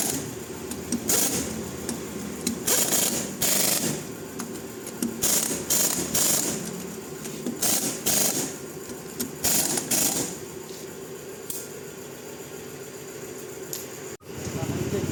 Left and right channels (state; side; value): identical; both; correlation 1.00